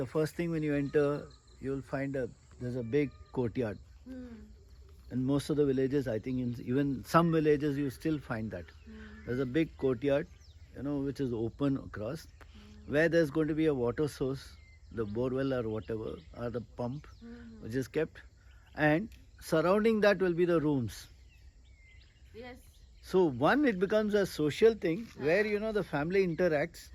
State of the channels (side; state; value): both; identical; correlation 1.00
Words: first thing when you enter, you will find a there's a big courtyard. Hmm. In most of the villages, I think even some villages you still find that. There's a big courtyard, which is open across, where there's going to be a water source, the borewell or whatever, or the pump, which is kept, and surrounding that will be the rooms. Yes. So it becomes a social thing where the family interacts,